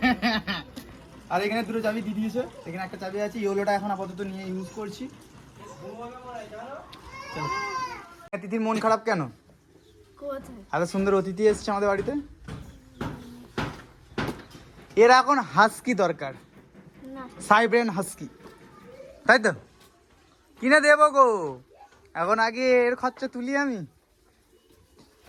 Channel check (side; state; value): both; identical; correlation 1.00